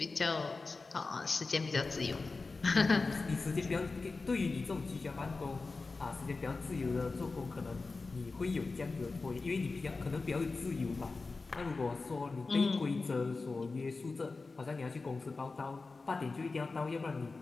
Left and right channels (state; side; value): quieter; right; 3.9 dB